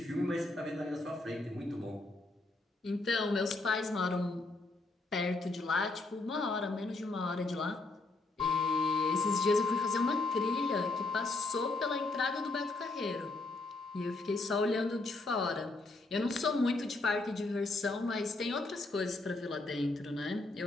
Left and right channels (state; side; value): quieter; right; 3.2 dB